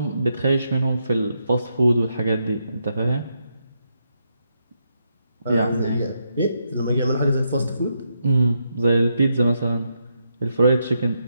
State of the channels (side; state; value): both; inverted; correlation -0.81